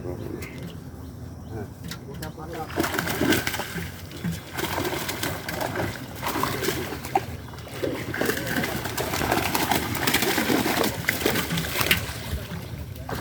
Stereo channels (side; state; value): both; identical; correlation 1.00